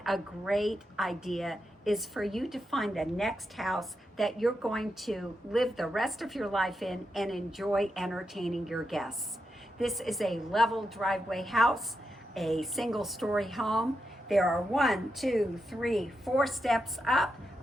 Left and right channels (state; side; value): normal; both; correlation 0.86